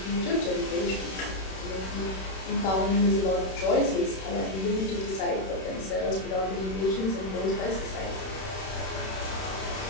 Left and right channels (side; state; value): right; late; 31 ms